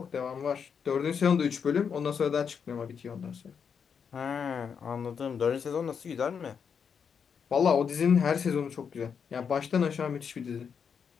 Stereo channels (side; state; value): right; quieter; 6.8 dB